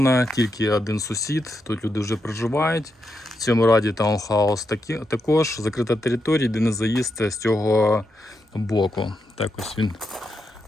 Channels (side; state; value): both; normal; correlation 0.84